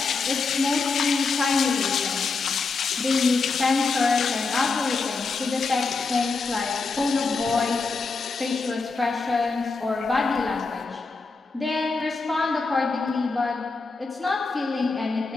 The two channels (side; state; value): right; quieter; 4.2 dB